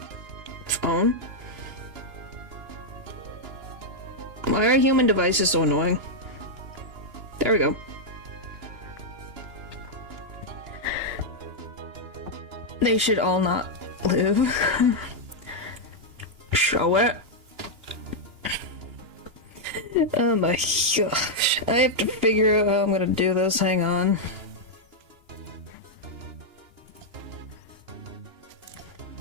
Phone? Why are human devices so annoying? There we go. They should all not live. Show it. Oh my gosh. I have to figure out how I'm gonna do this. Hang on.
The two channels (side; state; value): left; late; 2.9 ms